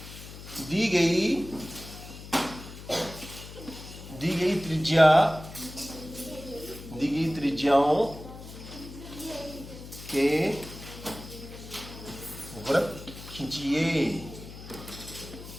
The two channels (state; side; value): noise; left; hum, 14 dB below the sound